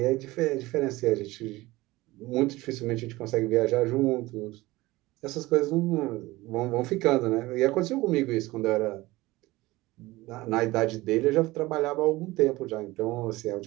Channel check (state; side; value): quieter; left; 19.5 dB